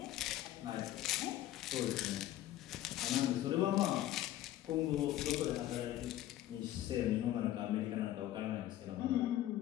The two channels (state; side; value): quieter; right; 13.6 dB